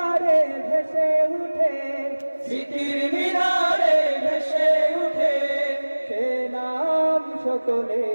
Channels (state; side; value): inverted; both; correlation -1.00